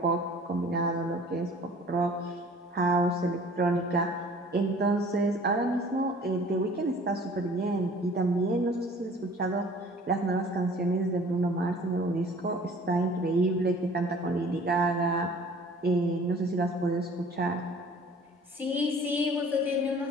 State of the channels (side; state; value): both; normal; correlation 0.49